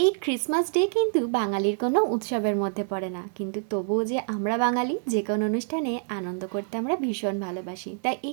এই Christmas day কিন্তু বাঙালির কোনো উৎসবের মধ্যে পড়ে না, কিন্তু তবুও যে আমরা বাঙালি যে কোনো অনুষ্ঠানে আনন্দ করতে আমরা ভীষণ ভালোবাসি। তাই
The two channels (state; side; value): silent; left; 60 dB below the other